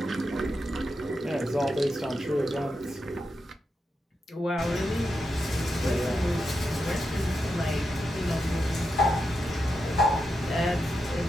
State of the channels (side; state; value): both; normal; correlation 0.86